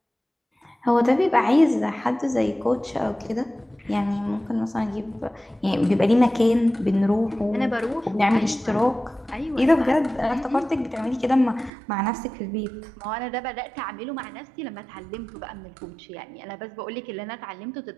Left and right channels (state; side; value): drops out; left; at 11.7 s